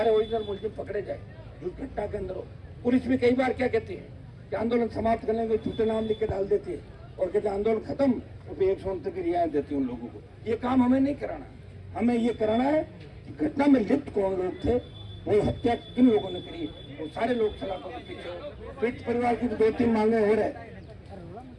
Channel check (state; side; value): identical; both; correlation 1.00